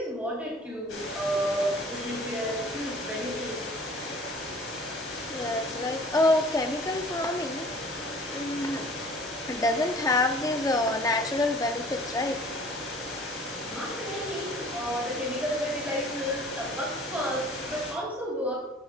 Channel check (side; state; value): both; normal; correlation 0.49